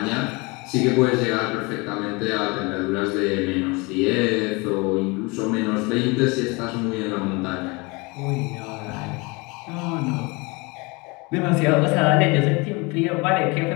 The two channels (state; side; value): quieter; right; 26.9 dB